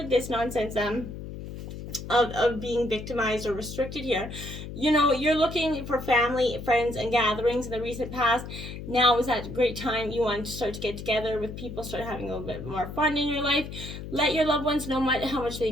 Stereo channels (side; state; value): left; noise; hum, 10 dB below the sound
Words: this nonsense of being victimized or restricted here. You know, you're looking for family, friends, and gatherings in the recent past. Now is that great time you want to start to get together with people, start having a little bit more fun in your life. Let your loved ones know how much